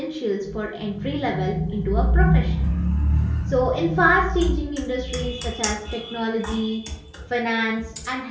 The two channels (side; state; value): both; identical; correlation 1.00